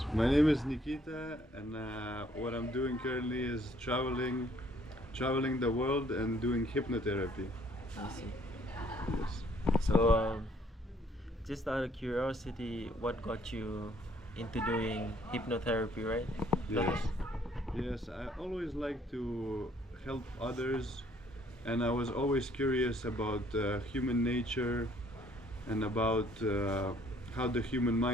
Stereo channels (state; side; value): normal; both; correlation 0.63